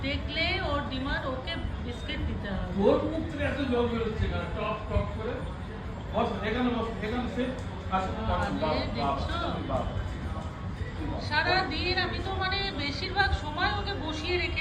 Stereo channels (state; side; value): identical; both; correlation 1.00